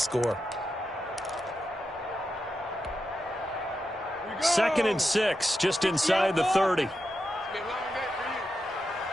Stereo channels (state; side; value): normal; both; correlation 0.88